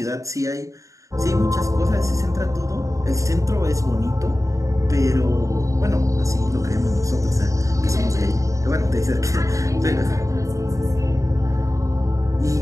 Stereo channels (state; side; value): late; left; 0.16 ms